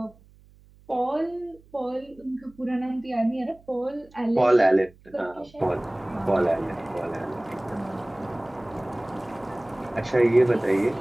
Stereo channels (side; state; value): right; noise; hum, 27 dB below the sound